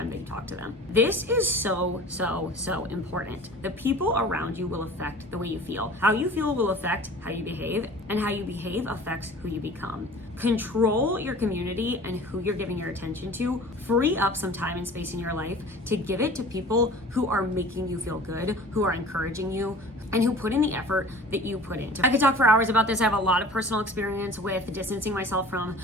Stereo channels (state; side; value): normal; both; correlation 0.43